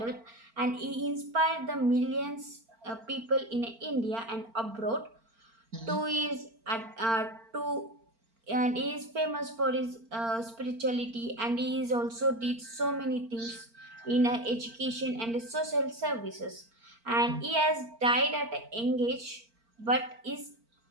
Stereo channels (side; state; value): left; late; 4.4 ms